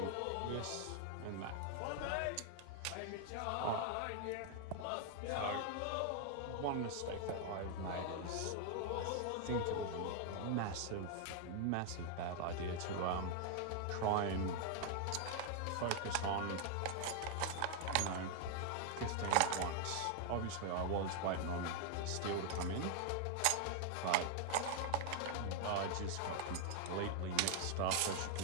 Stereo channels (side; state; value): both; different; correlation 0.00